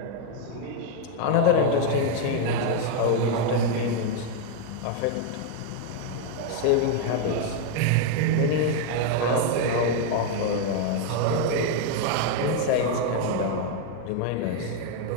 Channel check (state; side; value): different; both; correlation 0.01